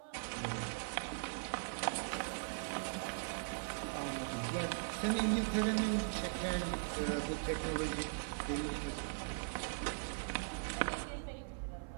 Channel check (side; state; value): left; silent; 51 dB below the other